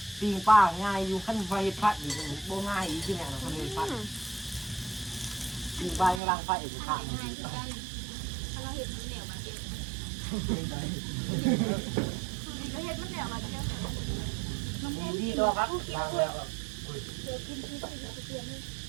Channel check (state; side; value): drops out; left; at 6.2 s